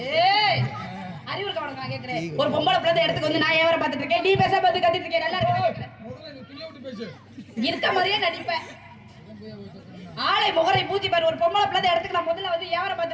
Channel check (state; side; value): identical; both; correlation 1.00